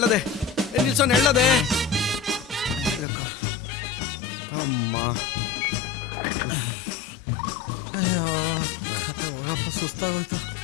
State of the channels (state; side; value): drops out; right; at 3.1 s